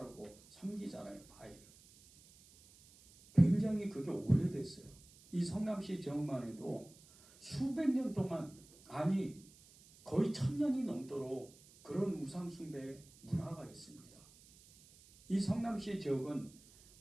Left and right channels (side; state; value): right; noise; hiss, 24 dB below the sound